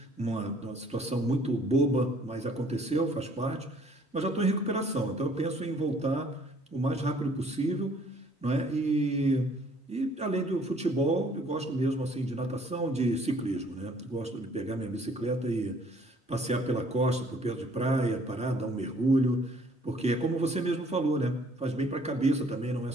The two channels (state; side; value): normal; both; correlation 0.59